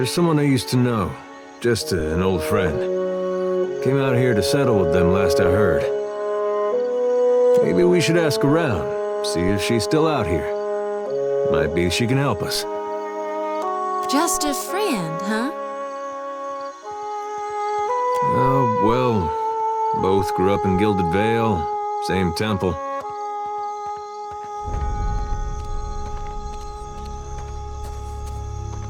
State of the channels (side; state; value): both; identical; correlation 1.00